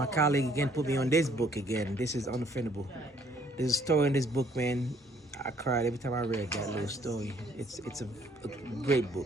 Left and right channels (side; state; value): both; normal; correlation 0.63